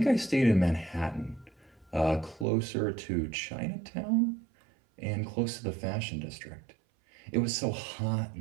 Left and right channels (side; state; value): left; drops out; at 2.5 s